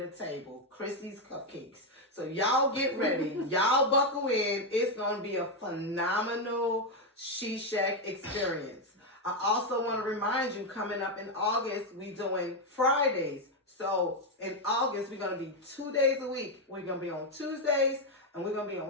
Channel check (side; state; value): both; normal; correlation 0.05